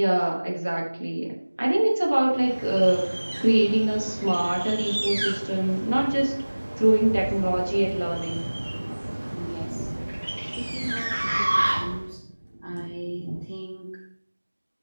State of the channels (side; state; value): both; inverted; correlation -1.00